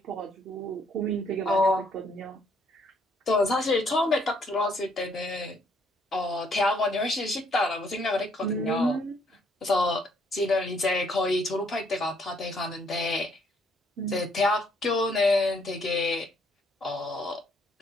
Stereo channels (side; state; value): both; normal; correlation 0.68